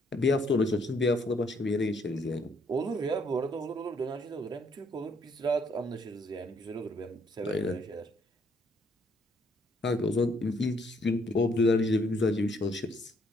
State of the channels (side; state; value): both; normal; correlation 0.68